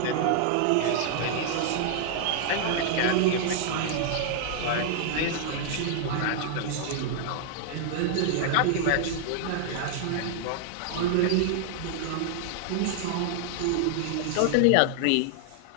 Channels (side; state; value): both; different; correlation 0.00